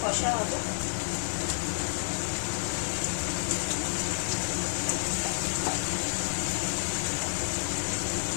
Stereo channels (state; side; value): silent; right; digital silence